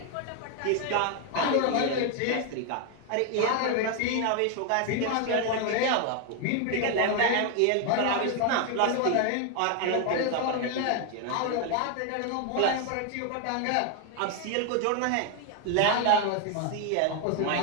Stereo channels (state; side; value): different; both; correlation 0.00